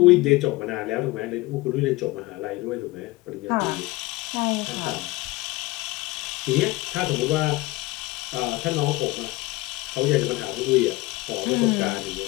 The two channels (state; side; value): quieter; right; 20.6 dB